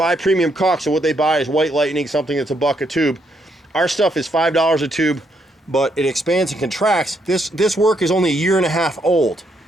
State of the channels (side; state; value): both; normal; correlation 0.75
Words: premium caulk. So what they buy is White Lightning, something that's $1 a tube. Our stuff is $5 a tube, but it expands and contracts. This work is only 1.5 years old.